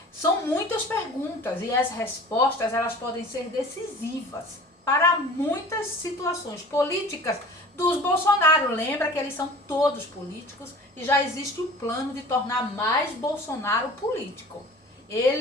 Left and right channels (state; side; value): normal; both; correlation 0.43